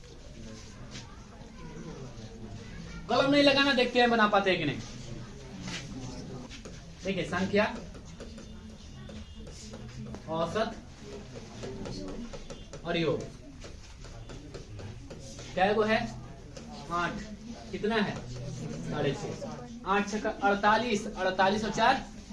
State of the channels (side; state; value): both; identical; correlation 1.00